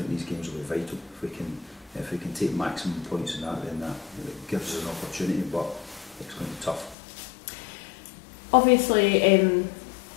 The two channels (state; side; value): drops out; right; at 7.0 s